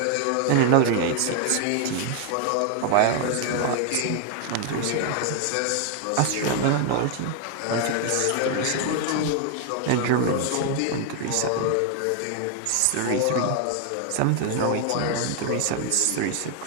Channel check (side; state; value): both; different; correlation 0.00